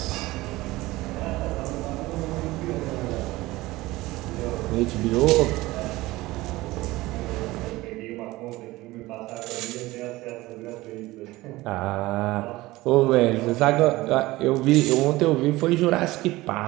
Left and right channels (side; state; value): left; quieter; 19.1 dB